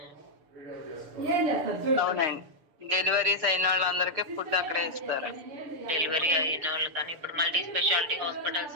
అవునండి, డెలివరీస్ అయిన వాళ్ళందరికీ ఫుడ్ అక్కడే ఇస్తారు. డెలివరీ అయిన వాళ్ళు కానీ ఇప్పుడు మల్టీ స్పెషాలిటీ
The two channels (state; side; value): late; left; 7.0 ms